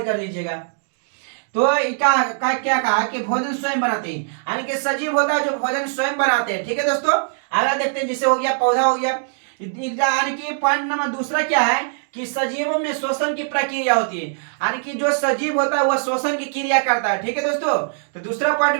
कर लीजिएगा। तो क्या कहा कि भोजन स्वयं बनाते हैं, यानी कि सजीव होता है जो भोजन स्वयं बनाते हैं। ठीक है दोस्तों, आगे देखते हैं, जिसे हो गया पौधा हो गया। यानी कि पॉइंट नंबर दूसरा क्या है कि सजीवों में श्वसन की प्रक्रिया होती है, यानी कि जो सजीव होता है वह श्वसन की क्रिया करता है। ठीक है दोस्तों, तो दूसरा पॉइंट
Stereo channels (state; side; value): silent; left; digital silence